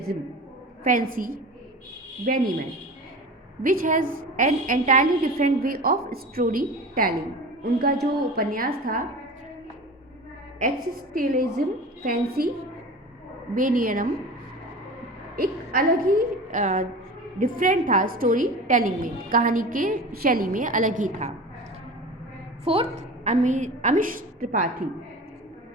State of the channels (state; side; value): normal; both; correlation 0.34